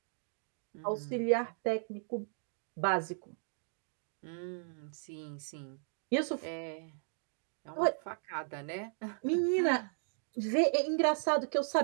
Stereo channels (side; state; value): left; silent; digital silence